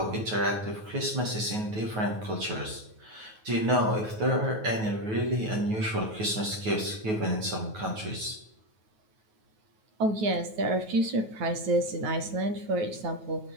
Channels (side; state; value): left; late; 9.3 ms